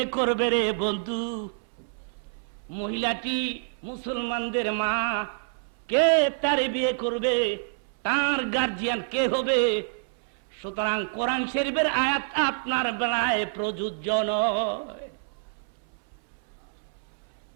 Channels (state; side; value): silent; left; 60 dB below the other